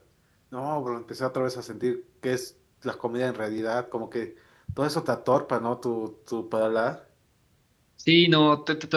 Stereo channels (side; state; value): both; identical; correlation 1.00